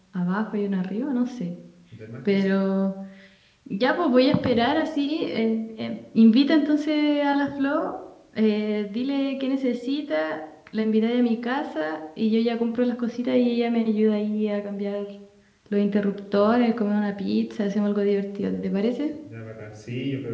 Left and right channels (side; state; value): both; identical; correlation 1.00